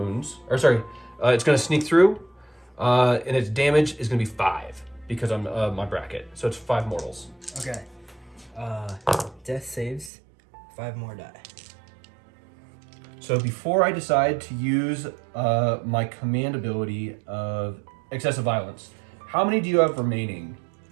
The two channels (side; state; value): left; drops out; at 10.1 s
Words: It's going to sneak through. And its damage is going to be 5 because I'm my bracket. So it's 5 mortals. Okay. Death saves. 5 more die. So before I decide to use my command ability of Excessive Violence, how many do you have remaining?